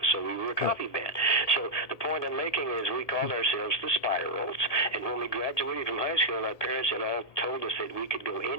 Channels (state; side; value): late; right; 1.8 ms